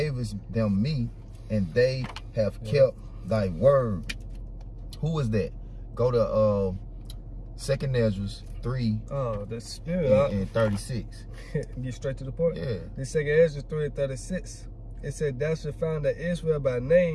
them me, and they have kept thy word. Who is that? Go to 2 Ezra 3. Oh, the Spirit. And 36. Get straight to the point. Yeah. The 2 Ezra 3:36. It said, thou shalt find that Israel by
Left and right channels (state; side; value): identical; both; correlation 1.00